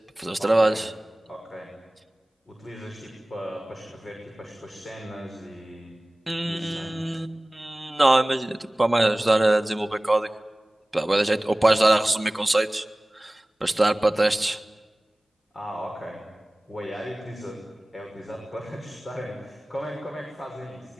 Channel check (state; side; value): normal; both; correlation 0.98